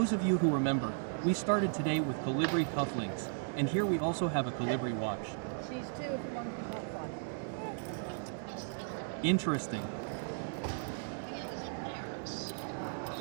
of you who remember, we started today with Colibri cufflinks, and here we also have a Colibri watch. Interesting.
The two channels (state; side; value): silent; left; digital silence